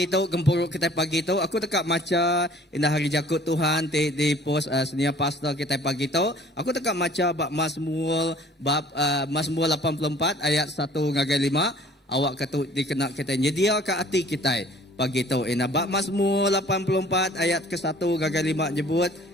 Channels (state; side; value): normal; both; correlation 0.52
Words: tu gempuruk kita pagi tu aku dekat maca indah hari jakut Tuhan di pos senia pastor kita pagi tu aku dekat maca bab Mazmur 84 ayat 1 ngagai 5 awak kata dikena kita nyedia ke hati kita pagi tu bab Mazmur 84 ayat ke 1 ngagai 5 nyebut